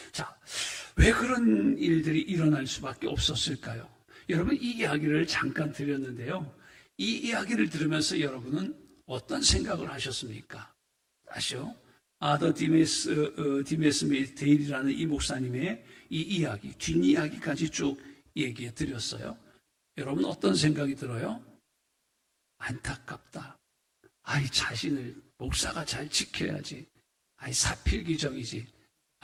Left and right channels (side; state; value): both; identical; correlation 1.00